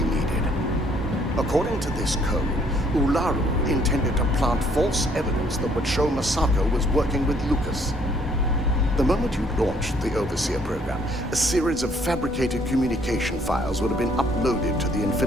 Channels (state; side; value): normal; both; correlation 0.64